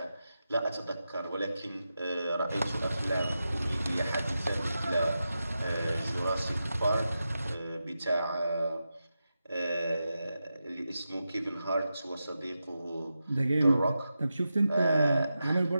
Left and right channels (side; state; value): both; inverted; correlation -0.90